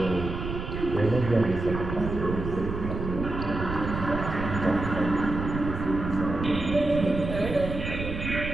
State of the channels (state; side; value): noise; right; rumble, 6 dB below the sound